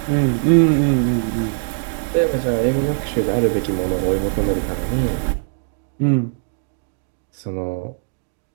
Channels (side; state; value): left; silent; digital silence